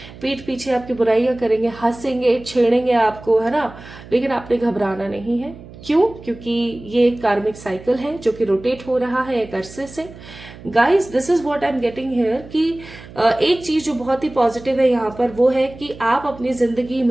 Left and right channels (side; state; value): right; noise; hum, 18 dB below the sound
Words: पीठ पीछे आपकी बुराइयां करेंगे, हंसेंगे, छेड़ेंगे आपको, है ना। लेकिन आपने घबराना नहीं है। क्यों? क्योंकि ये एक कार्मिक साइकिल है जो कि रोटेट हो रहा है एक अरसे से। Guys this is what I am getting here कि एक चीज जो बहुत ही पॉजिटिव है यहाँ पर वो है कि आप अपनी जिंदगी